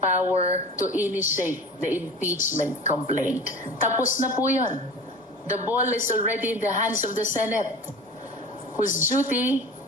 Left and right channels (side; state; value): both; normal; correlation 0.36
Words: power to initiate the impeachment complaint. Tapos na po yun. The ball is already in the hands of the Senate, whose duty